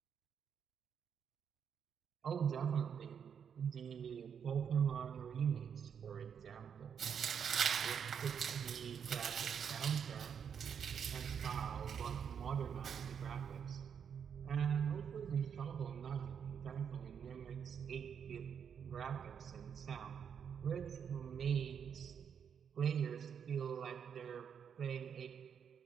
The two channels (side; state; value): left; quieter; 7.5 dB